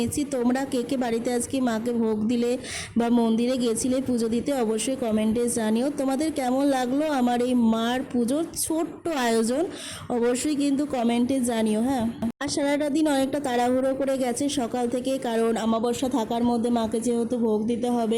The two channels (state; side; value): identical; both; correlation 1.00